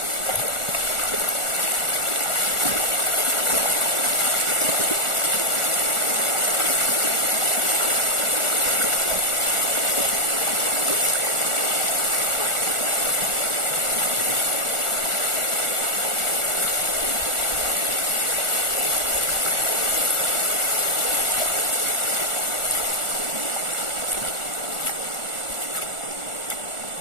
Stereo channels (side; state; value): right; late; 1.4 ms